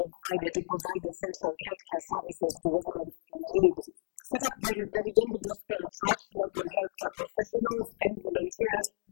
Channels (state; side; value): silent; right; digital silence